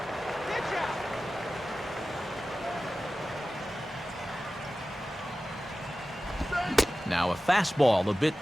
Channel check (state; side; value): normal; both; correlation 0.95